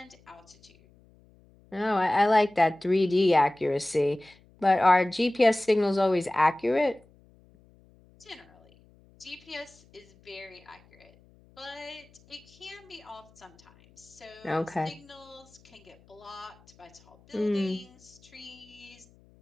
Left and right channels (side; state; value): left; noise; hum, 28 dB below the sound